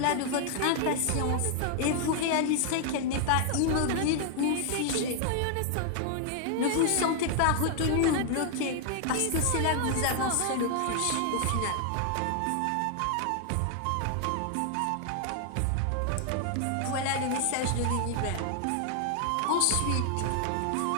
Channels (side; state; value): both; different; correlation 0.00